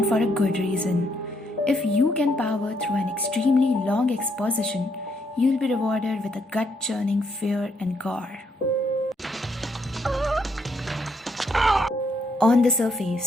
for a good reason. If you can power through an extremely long exposition, you'll be rewarded with a gut-churning fear and gore. On the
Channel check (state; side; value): normal; both; correlation 0.74